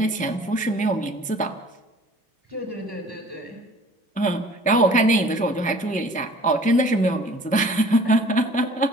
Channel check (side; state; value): both; normal; correlation 0.51